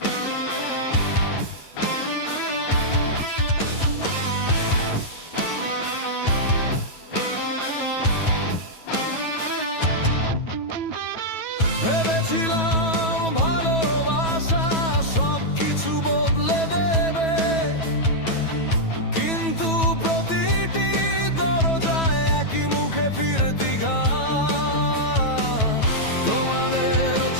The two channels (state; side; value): late; right; 9.2 ms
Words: ভেবেছিলাম ভালোবাসা সবকিছু বদলে দেবে, কিন্তু প্রতিটি দরজায় একই মুখে ফিরতি ঘাট। তোমাদের